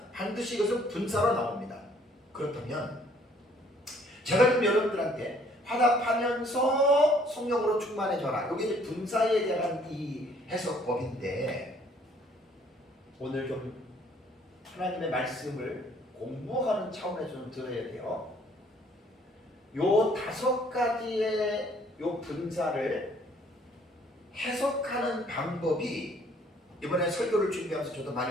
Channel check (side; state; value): both; normal; correlation 0.61